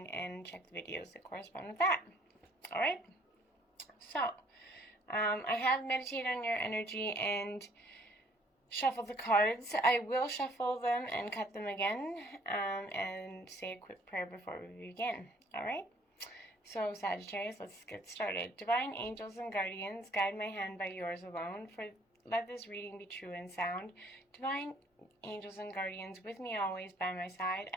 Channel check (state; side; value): normal; both; correlation 0.60